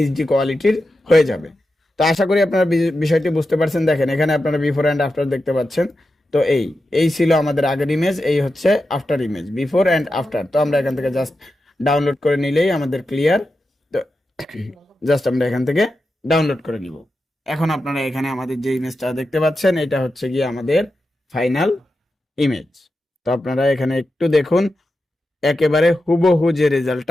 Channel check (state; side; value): normal; both; correlation 0.90